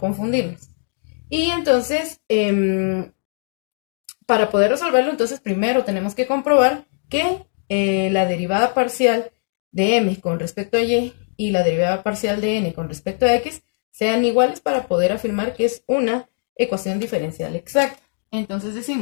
Y entonces, para poder resolverlo, entonces primero tenemos que comprobar que la derivada parcial de m con respecto a y la derivada parcial de n con respecto a x sean iguales para poder afirmar que es una ecuación diferencial exacta. Entonces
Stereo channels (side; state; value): right; silent; 65 dB below the other